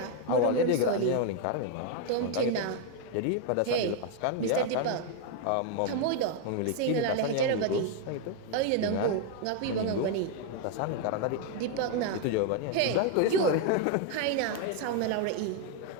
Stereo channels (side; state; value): both; different; correlation 0.01